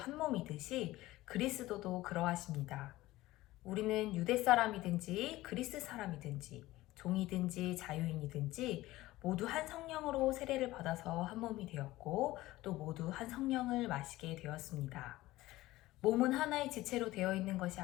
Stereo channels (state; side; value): quieter; right; 17.5 dB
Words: 몸이듯이 그리스도도 그러하십니다. 우리는 유대 사람이든지 그리스 사람이든지 종이든지 자유인이든지 모두 한 성령으로 세례를 받아서 한 몸이 되었고 또 모두 한 성령을 마시게 되었습니다. 몸은 하나의 지체로 되어 있는 것이